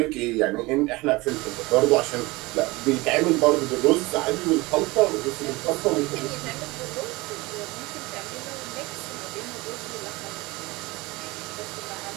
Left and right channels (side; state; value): left; quieter; 22.4 dB